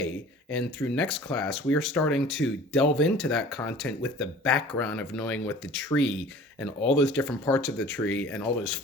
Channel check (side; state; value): both; normal; correlation 0.45